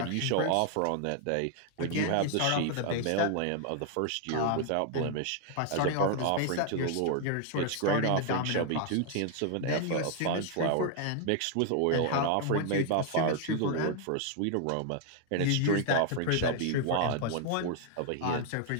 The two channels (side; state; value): both; different; correlation 0.00